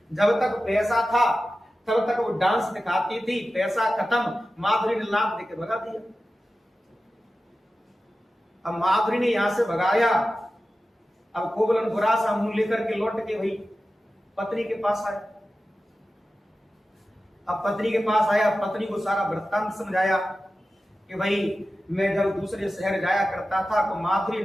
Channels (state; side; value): normal; both; correlation 0.94